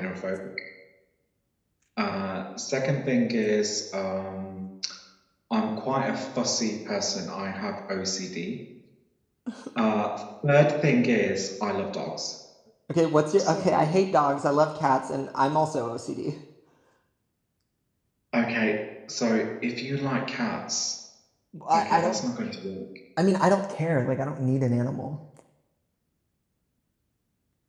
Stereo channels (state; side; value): identical; both; correlation 1.00